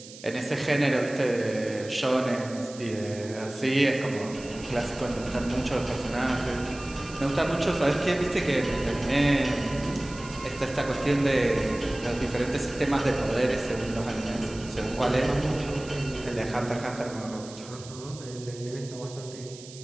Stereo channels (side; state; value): right; noise; hiss, 17 dB below the sound